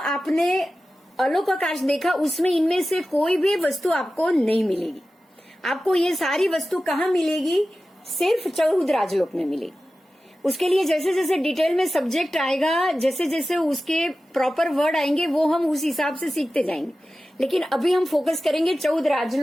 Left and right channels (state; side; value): normal; both; correlation 0.94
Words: अलोकाकाश देखा, उसमें इनमें से कोई भी वस्तु आपको नहीं मिलेगी। आपको ये सारी वस्तु कहाँ मिलेगी? सिर्फ 14 राजलोक में मिलेगी। उसके लिए जैसे जैसे डिटेल में सब्जेक्ट आएगा, जैसे जैसे उसके प्रॉपर वर्ड आएंगे, वो हम उस हिसाब से सीखते जाएंगे। लेकिन अभी हम फोकस करेंगे 14